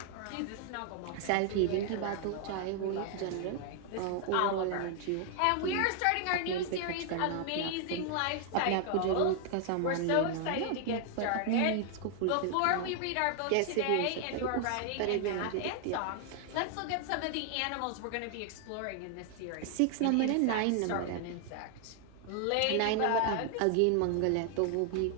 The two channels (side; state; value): both; different; correlation 0.00